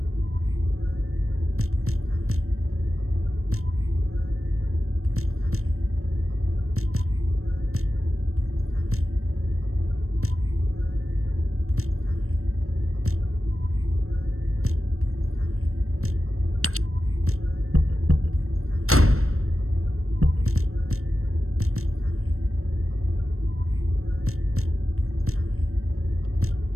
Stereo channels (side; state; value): left; late; 0.63 ms